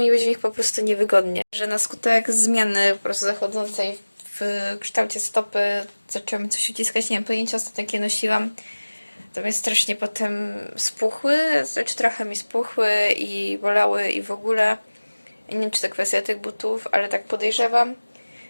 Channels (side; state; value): both; inverted; correlation -1.00